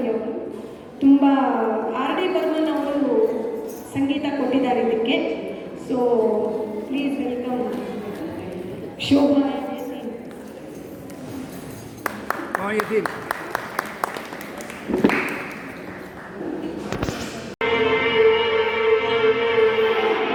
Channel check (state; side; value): identical; both; correlation 1.00